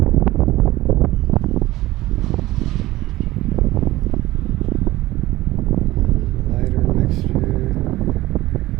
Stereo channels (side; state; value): left; quieter; 17.3 dB